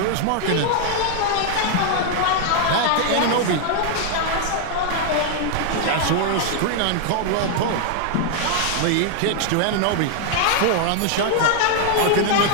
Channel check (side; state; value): both; different; correlation 0.00